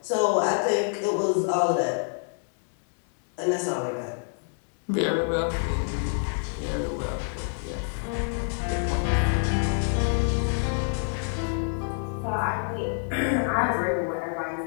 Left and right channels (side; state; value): right; silent; 60 dB below the other